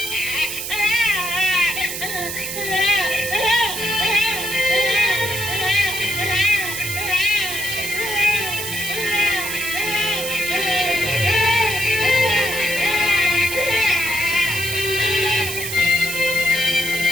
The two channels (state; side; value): noise; right; hiss, 5 dB below the sound